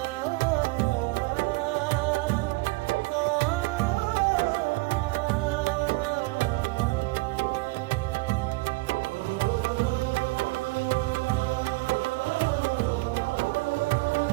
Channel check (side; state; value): left; quieter; 23.8 dB